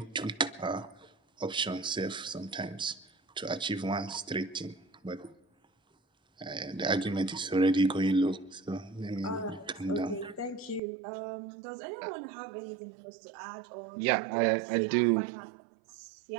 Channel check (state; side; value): drops out; left; at 10.8 s